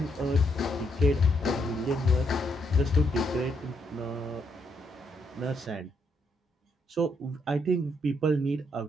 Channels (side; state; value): both; normal; correlation 0.76